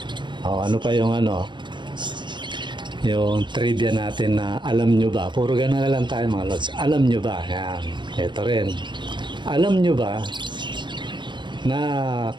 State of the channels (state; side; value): late; left; 0.23 ms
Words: Ano pa yung yung trivia natin na alam nyo ba? Puro gano'n na lang tayo mga lods. Alam nyo ba? Yan. Ito rin. Alam nyo ba na